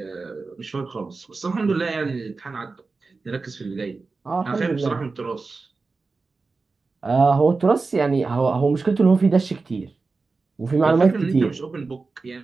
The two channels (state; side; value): quieter; left; 4.0 dB